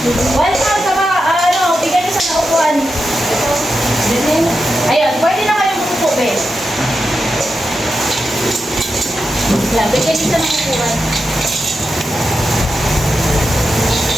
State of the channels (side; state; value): both; normal; correlation 0.88